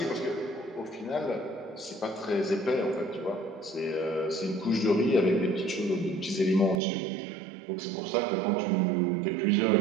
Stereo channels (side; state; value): left; drops out; at 6.8 s